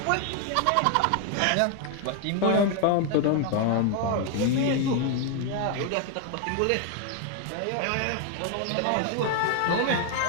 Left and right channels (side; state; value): both; different; correlation 0.01